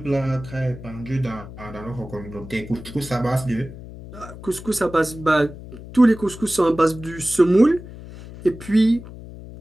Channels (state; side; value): noise; left; hum, 14 dB below the sound